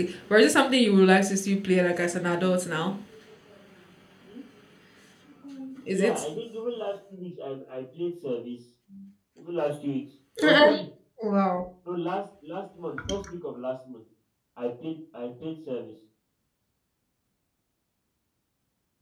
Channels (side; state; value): both; identical; correlation 1.00